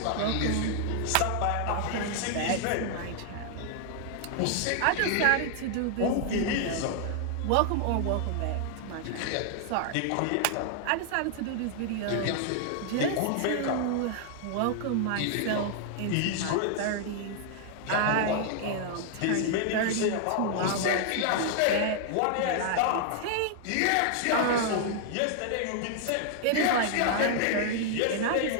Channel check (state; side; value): different; both; correlation 0.00